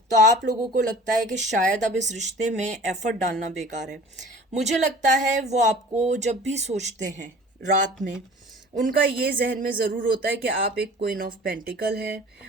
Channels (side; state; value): both; normal; correlation 0.44